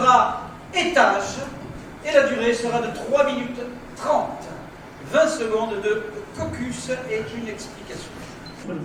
étage, et la durée sera de 3 minutes 30. 20 secondes de caucus et une explication.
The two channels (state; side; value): identical; both; correlation 1.00